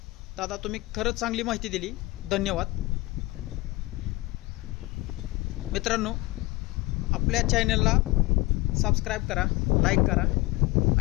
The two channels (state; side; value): quieter; right; 20.9 dB